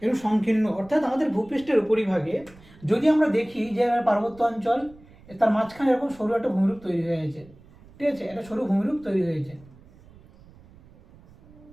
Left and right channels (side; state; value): right; noise; rumble, 24 dB below the sound